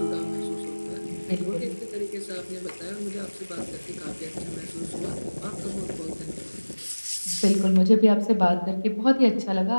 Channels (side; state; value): both; inverted; correlation -1.00